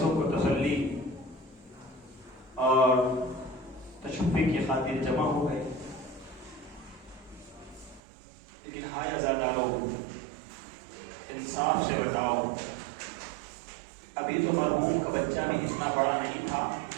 کو تسلی اور تشفی کی خاطر جمع ہو گئے. لیکن ہائے عزادارو، انصاف سے بتاؤ، ابھی تو مرحوم کا بچہ بھی اتنا بڑا نہیں تھا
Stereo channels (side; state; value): left; drops out; at 8.0 s